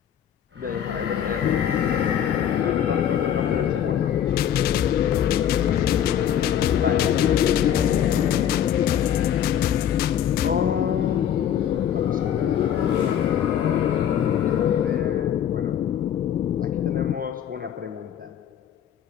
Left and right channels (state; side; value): quieter; right; 9.7 dB